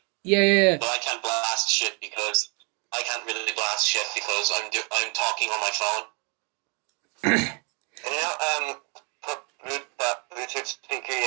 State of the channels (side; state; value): left; quieter; 33.8 dB